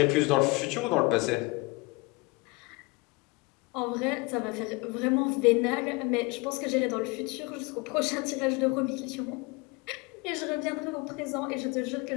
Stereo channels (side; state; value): right; quieter; 26.3 dB